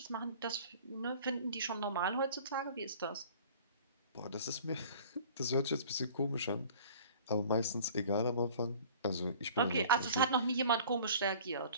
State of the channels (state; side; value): inverted; both; correlation -0.47